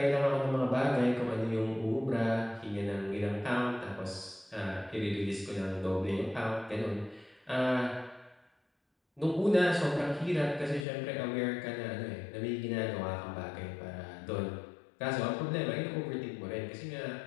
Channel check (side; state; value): right; drops out; at 10.9 s